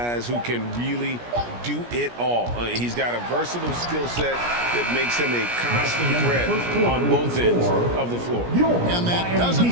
who can really do it all. He's got a versatile skill set that makes him a constant threat on both ends of the floor. And that does it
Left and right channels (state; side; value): late; left; 17 ms